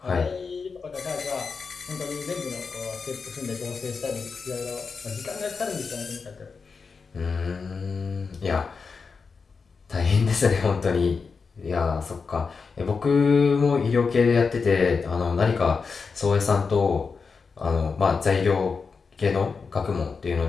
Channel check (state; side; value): quieter; right; 5.0 dB